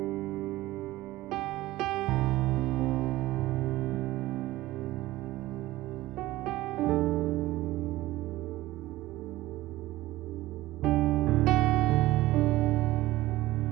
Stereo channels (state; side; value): quieter; left; 17.3 dB